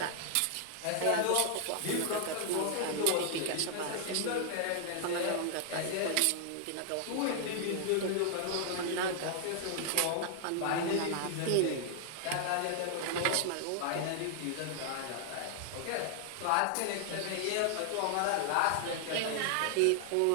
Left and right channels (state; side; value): different; both; correlation 0.00